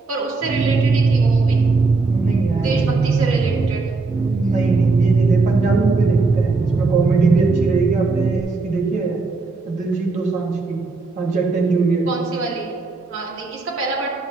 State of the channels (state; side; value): quieter; left; 3.8 dB